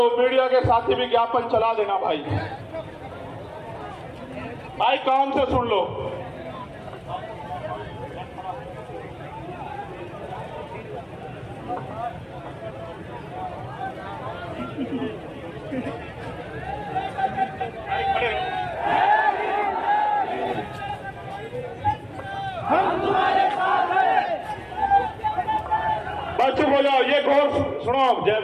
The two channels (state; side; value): identical; both; correlation 1.00